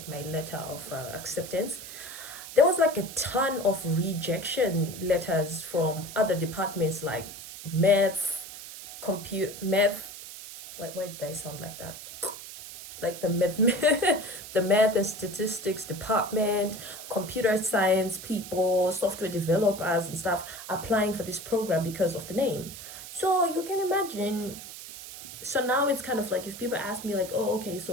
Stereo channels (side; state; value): right; noise; hiss, 12 dB below the sound